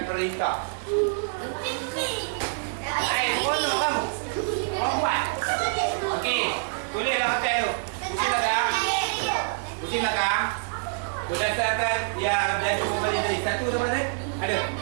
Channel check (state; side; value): silent; left; 61 dB below the other